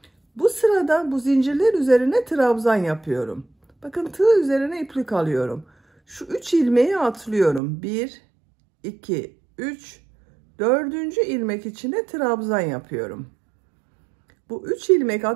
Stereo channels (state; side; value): drops out; left; at 7.6 s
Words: Bu sırada bu zincirler üzerine trabzan yapıyorum. Bakın tığ üzerine iplik alıyorum. Şu 3 ilmeği atlıyorum. 1, 2, 3, 4. ilmek içine trabzan yapıyorum. Bu 3 ilmek